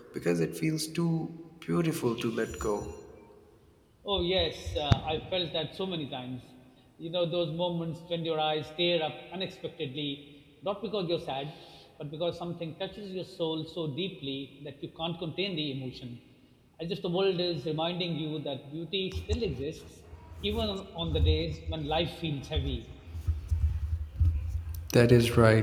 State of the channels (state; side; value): identical; both; correlation 1.00